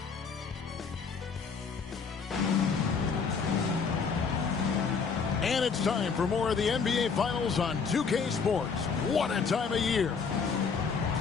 And it's time for more of the NBA Finals on 2K Sports. What a time of year.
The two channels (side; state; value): right; quieter; 5.6 dB